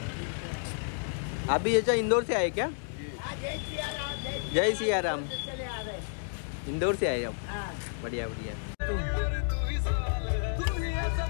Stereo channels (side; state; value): right; silent; digital silence